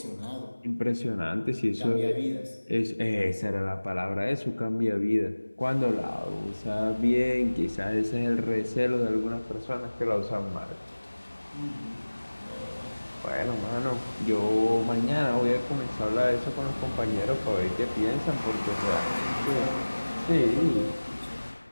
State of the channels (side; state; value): both; inverted; correlation -1.00